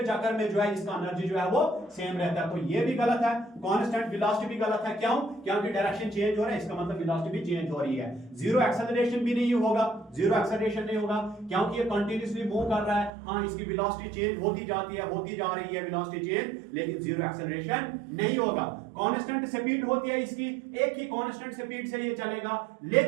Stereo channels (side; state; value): left; drops out; at 13.1 s